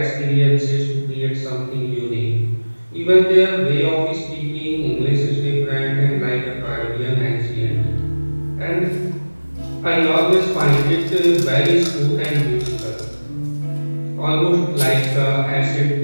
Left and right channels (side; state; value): both; inverted; correlation -1.00